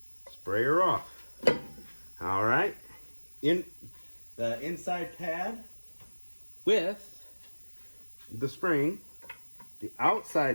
spray her off. All right, in the inside pad with the spring, the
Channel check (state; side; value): inverted; both; correlation -1.00